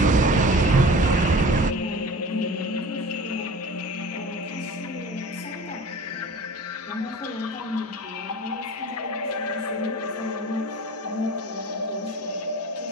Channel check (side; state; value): both; normal; correlation 0.40